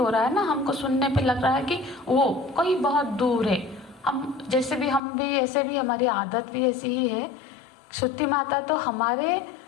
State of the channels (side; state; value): right; drops out; at 5.0 s